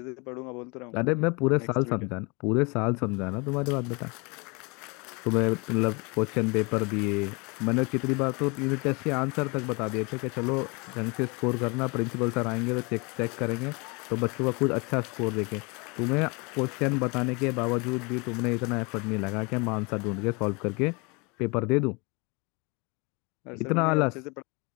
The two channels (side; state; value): right; quieter; 29.5 dB